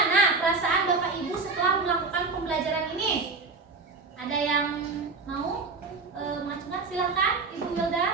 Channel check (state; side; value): quieter; left; 4.1 dB